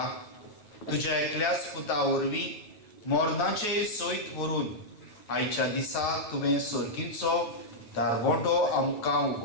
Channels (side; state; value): right; late; 9.2 ms